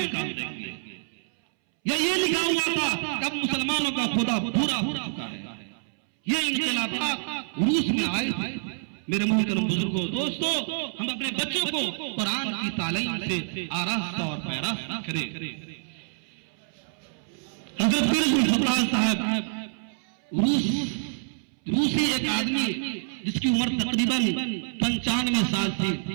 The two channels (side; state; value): left; silent; 60 dB below the other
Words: نکال دیں گے. یہ لکھا ہوا تھا کہ اب مسلمانوں کا خدا بھورا ہو چکا ہے. یہ انقلابات روس میں آئے تھے. میرے محترم بزرگوں دوستوں، ہم اپنے بچوں کو قرآن کی تعلیم سے آراستہ اور پیراستہ کریں۔ حضرت پیر الفقراء صاحب روسی ایک آدمی جس کی عمر تقریباً 95 سال تھی،